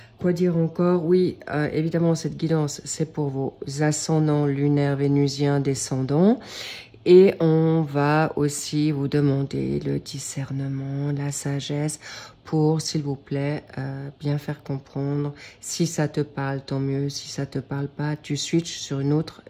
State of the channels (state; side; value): identical; both; correlation 1.00